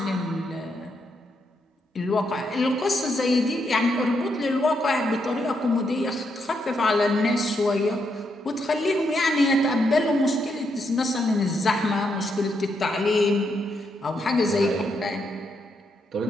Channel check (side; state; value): both; normal; correlation 0.79